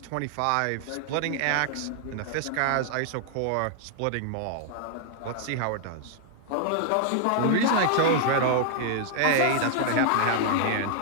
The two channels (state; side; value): different; both; correlation -0.01